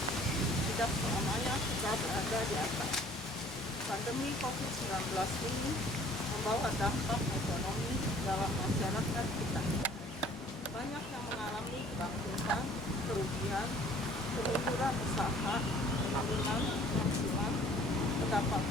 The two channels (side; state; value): both; normal; correlation 0.54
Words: tidak selamanya kita berada di atas. Pandemi COVID-19 ini membawa dampak ekonomi dalam masyarakat kita. Banyak yang mengalami kebangkrutan, kerugian, kemunduran usaha, penurunan penghasilan,